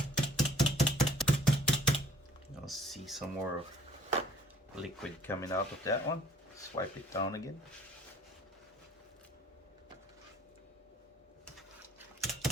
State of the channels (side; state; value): both; normal; correlation 0.55